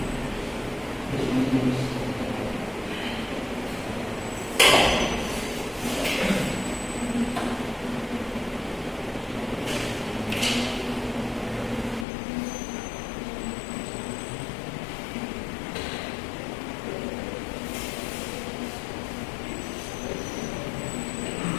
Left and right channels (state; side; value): drops out; right; at 12.1 s